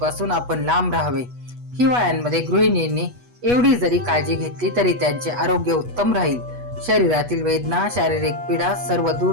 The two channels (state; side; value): late; left; 8.2 ms